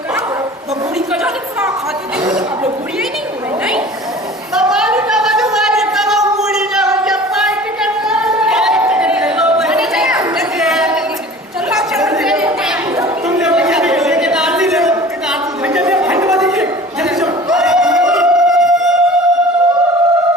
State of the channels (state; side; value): normal; both; correlation 0.43